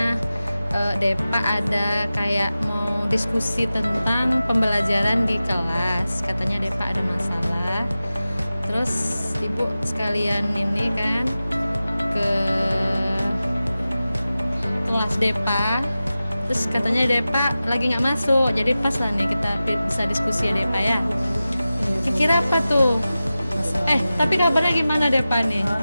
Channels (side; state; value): both; inverted; correlation -0.95